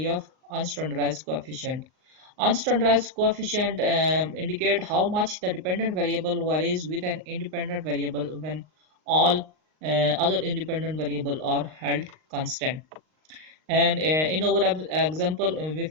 of unstandardized coefficient. Unstandardized coefficient indicate how much the dependent variable varies with an independent variable when all other independent variable are held constant. And in our example, we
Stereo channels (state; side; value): late; left; 38 ms